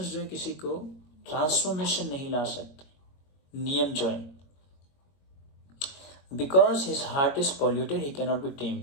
जो है किसी को ट्रांसफॉर्मेशन नहीं ला सकते, नियम जो है। Because his heart is polluted, he cannot be tamed.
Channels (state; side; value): late; right; 22 ms